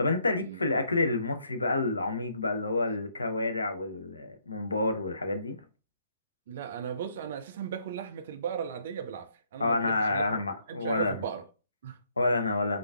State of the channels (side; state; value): both; inverted; correlation -0.69